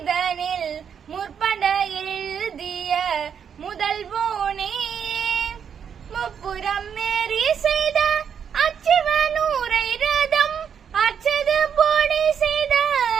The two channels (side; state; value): left; quieter; 7.6 dB